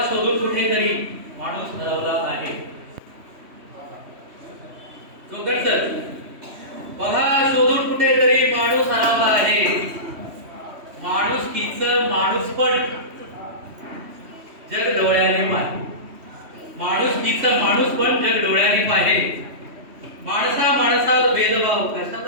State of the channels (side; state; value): left; late; 3.1 ms